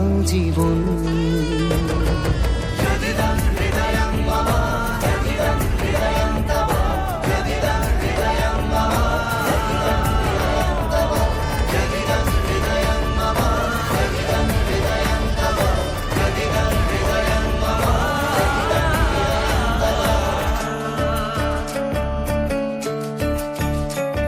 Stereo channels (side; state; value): both; identical; correlation 1.00